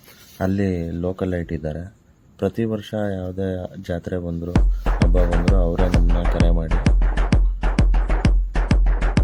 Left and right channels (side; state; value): both; identical; correlation 1.00